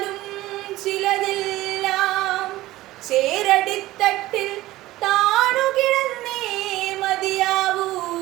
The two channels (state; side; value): quieter; left; 17.0 dB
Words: ചിലതെല്ലാം ചേരടിത്തട്ടിൽ താണുകിടന്നേ മതിയാവൂ.